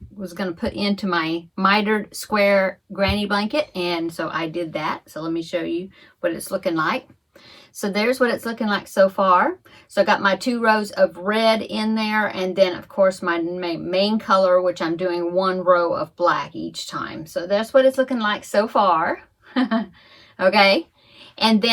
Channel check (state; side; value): identical; both; correlation 1.00